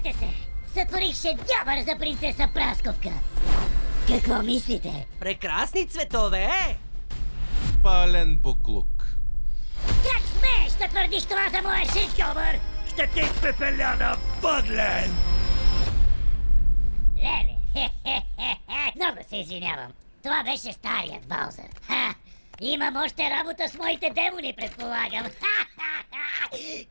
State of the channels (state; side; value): inverted; both; correlation -1.00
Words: се! Сътворих шедьовър за принцеса Прасковка! Какво мислите? Прекрасни цветове, е! Пален буклук. Как смееш да твърдиш това за моя шедьовър? Ще те изпепеля на въглен! Леле, хе-хе-хе-хе, много се извинявам. Това беше старият Баузър. Ха! Имам още работа с моите демони, предполагам. Ха-ха-ха!